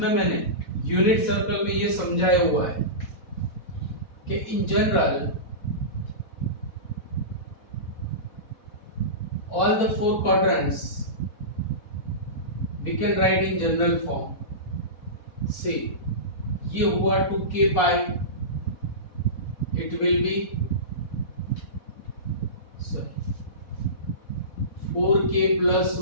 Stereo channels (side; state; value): right; late; 4.1 ms